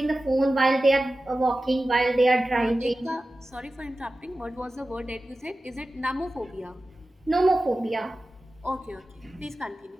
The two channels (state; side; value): normal; both; correlation 0.95